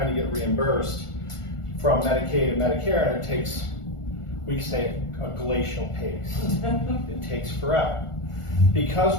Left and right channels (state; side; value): late; right; 1.4 ms